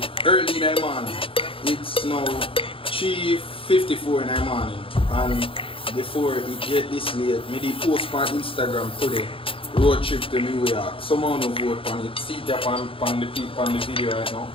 early in the morning. It's now 3:54 in the morning. And before it get this late, me did post on Instagram today. Road trip to New York. Someone will vote on it. See that on the video right now.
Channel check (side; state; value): right; late; 0.26 ms